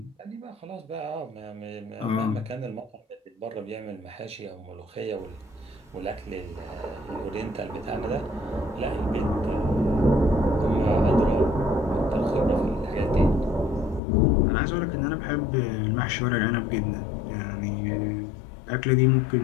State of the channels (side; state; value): right; drops out; at 14.0 s